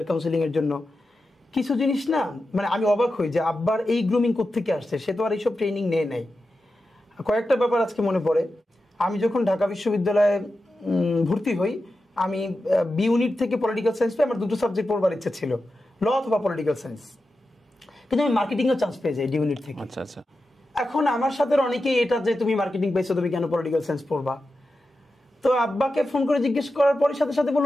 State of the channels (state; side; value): normal; both; correlation 0.91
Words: কাউন্সিলিং এর জন্য। কিছু জিনিস না, মানে আমি অবাক হই যে আব্বার এই গ্রুমিং কোত্থেকে আসছে, সে তো আর এইসব ট্রেনিং নেয় নাই। কয়েকটা ব্যাপার আজকে মনে পড়ে। আমি যখন ঢাকা বিশ্ববিদ্যালয়ে ভর্তি হই, আমি বি ইউনিট থেকে পলিটিক্যাল সায়েন্স পেয়ে আমার দুটো সাবজেক্ট পড়বার ইচ্ছা ছিল, ল অথবা পলিটিক্যাল সায়েন্স, কিন্তু আমি মার্কেটিংয়েও চান্স পেয়ে যাই ডি ইউনিট থেকে। আচ্ছা আচ্ছা। এখন আমার সাথে অনেকেই এটা যে তুমি মার্কেটিং পাইছো, তুমি কেন পলিটিক্যাল সায়েন্স পড়বা? তো আব্বাকে ফোন করে জিজ্ঞেস করার পরে সাথে সাথে